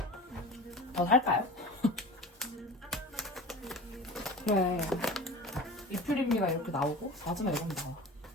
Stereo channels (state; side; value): normal; both; correlation 0.35